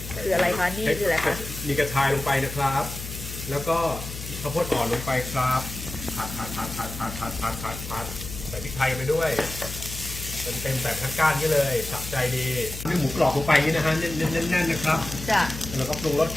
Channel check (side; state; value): left; noise; hum, 9 dB below the sound